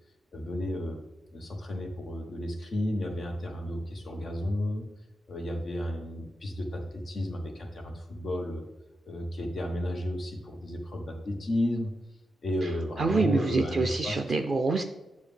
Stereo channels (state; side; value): normal; both; correlation 0.87